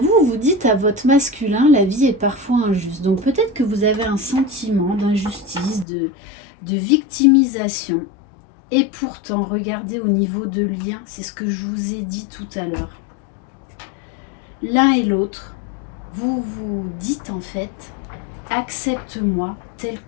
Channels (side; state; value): right; drops out; at 5.9 s